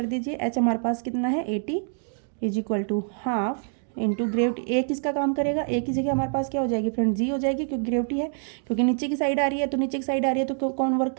दीजिए, एच हमारे पास कितना है 80 is equal to half into gravity. ए किसका काम करेगा, ए की जगह हमारे पास क्या हो जाएगी फ्रेंड, जी हो जाएगी, क्योंकि ग्रेविटी है, क्योंकि नीचे की साइड आ रही है, तो नीचे की साइड आ रही है तो कौन वर्क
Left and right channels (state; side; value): silent; left; digital silence